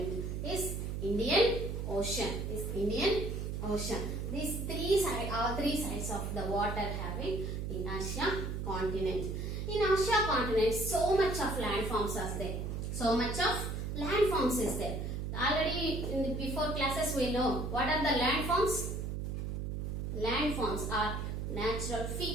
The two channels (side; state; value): right; noise; hum, 3 dB below the sound